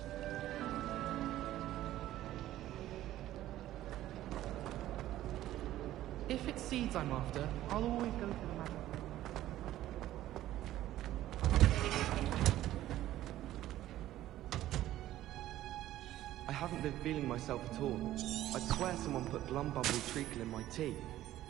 If it's seeds I'm after, I'll always go for the magic. I haven't been feeling myself at all. I'd swear someone put Glumbumble treacle in my tea.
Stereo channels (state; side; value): quieter; left; 14.0 dB